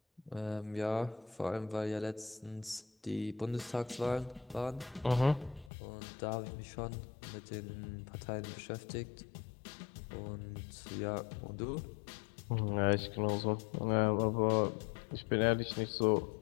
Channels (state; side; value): drops out; right; at 5.7 s